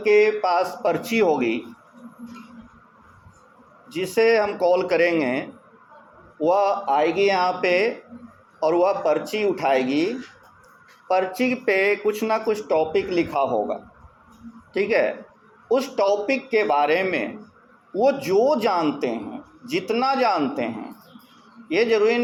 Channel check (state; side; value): identical; both; correlation 1.00